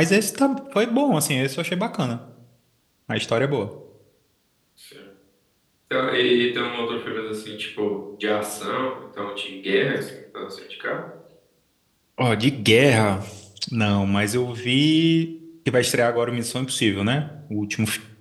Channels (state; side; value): identical; both; correlation 1.00